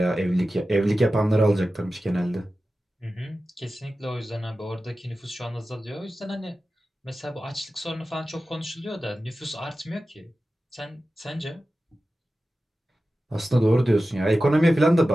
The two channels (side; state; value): both; normal; correlation 0.94